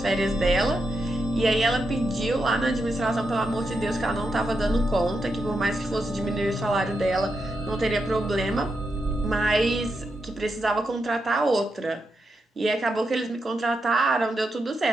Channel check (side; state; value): both; normal; correlation 0.85